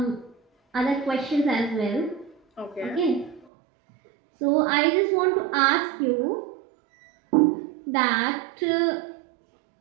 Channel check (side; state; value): left; drops out; at 3.5 s